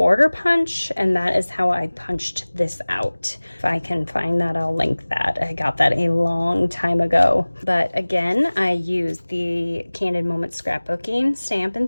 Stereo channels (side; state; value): both; inverted; correlation -1.00